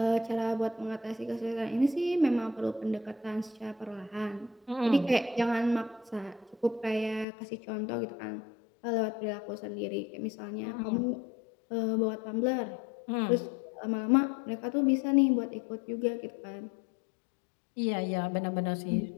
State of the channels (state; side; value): drops out; right; at 7.2 s